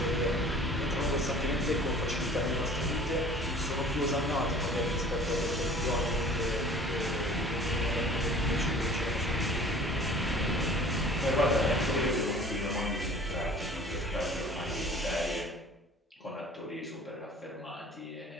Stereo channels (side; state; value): both; normal; correlation 0.47